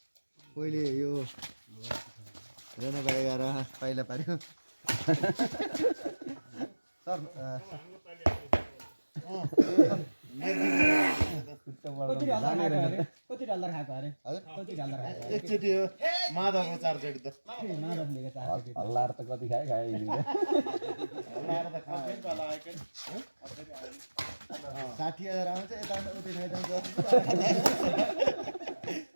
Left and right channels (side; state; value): both; inverted; correlation -1.00